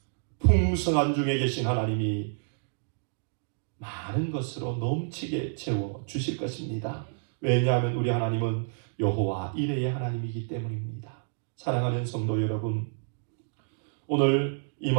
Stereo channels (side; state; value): left; silent; digital silence